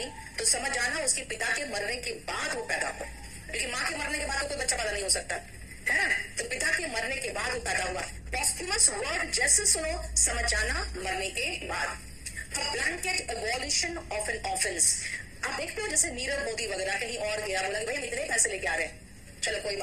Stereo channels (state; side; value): identical; both; correlation 1.00